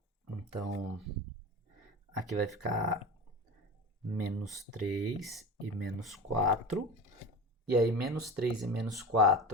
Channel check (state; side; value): normal; both; correlation 0.30